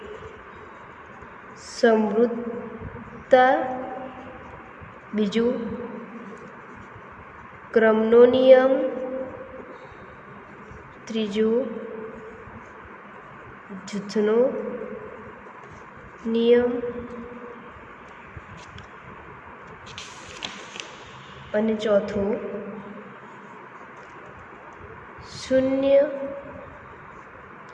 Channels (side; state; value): both; identical; correlation 1.00